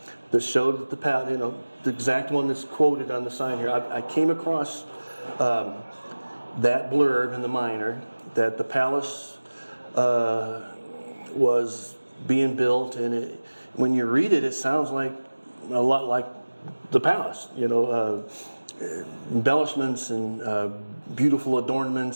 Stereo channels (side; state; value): both; inverted; correlation -1.00